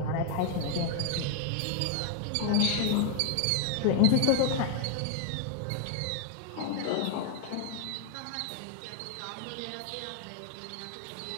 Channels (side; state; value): both; different; correlation 0.00